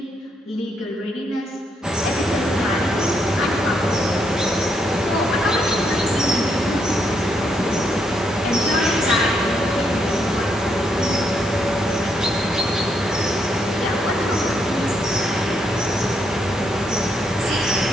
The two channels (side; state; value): both; normal; correlation 0.76